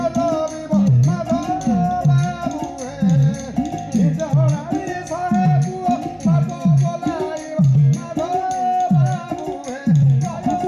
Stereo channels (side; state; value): both; identical; correlation 1.00